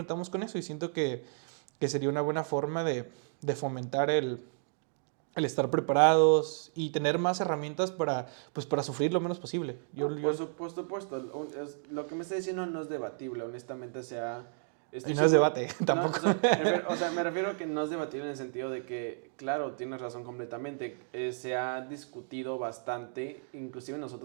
con eso y siento que sería una buena forma de fomentar el estar preparados y tener más herramientas pues, para sufrir lo menos posible. Por supuesto, lo que me está diciendo no es debatible, honestamente, Y no es debate, tampoco. O sea, me refiero a que no es debatible en el sentido de que, claro, tienes razón completamente, se ha discutido bastante, inclusive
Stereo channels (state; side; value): silent; left; digital silence